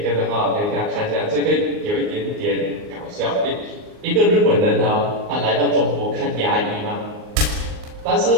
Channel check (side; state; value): left; late; 39 ms